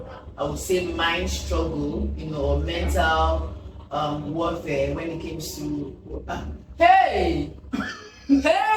I would say mind struggle, or mental warfare when it comes to hey. When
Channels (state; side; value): identical; both; correlation 1.00